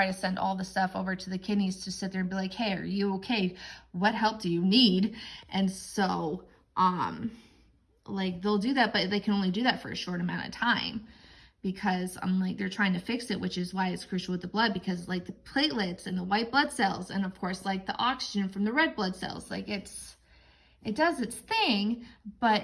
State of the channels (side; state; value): both; identical; correlation 1.00